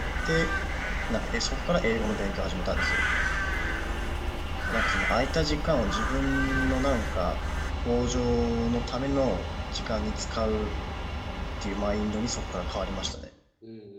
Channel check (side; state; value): both; identical; correlation 1.00